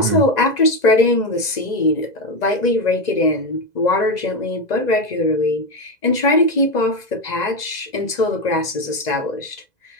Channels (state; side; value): late; right; 2.0 ms